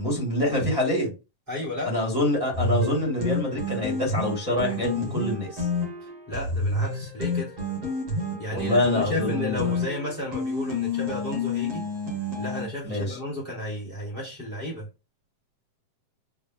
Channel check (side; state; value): left; late; 7.5 ms